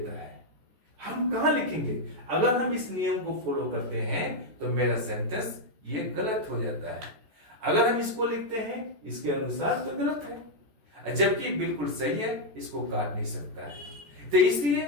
है। हम कहां लिखेंगे? अगर हम इस नियम को फॉलो करते हैं तो मेरा सेंटेंस ये गलत हो जाता है। अगर हम इसको लिखते हैं इसके अनुसार तो गलत है, जबकि बिल्कुल सही है, इसको काट नहीं सकता है। तो इसलिए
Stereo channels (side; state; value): left; late; 14 ms